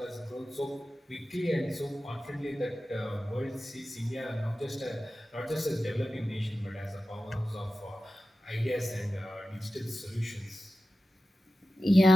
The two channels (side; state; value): both; normal; correlation 0.94